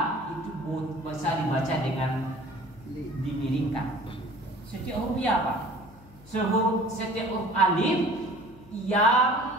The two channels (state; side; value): noise; left; hum, 23 dB below the sound